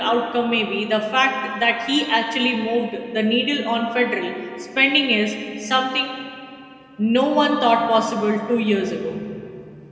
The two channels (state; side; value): identical; both; correlation 1.00